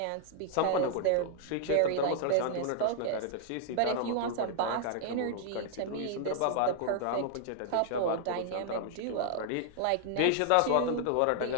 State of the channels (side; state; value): both; different; correlation -0.01